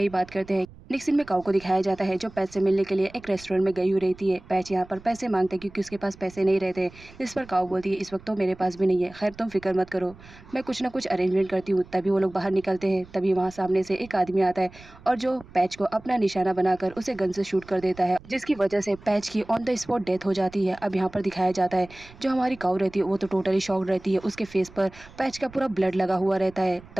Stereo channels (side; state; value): right; noise; rumble, 21 dB below the sound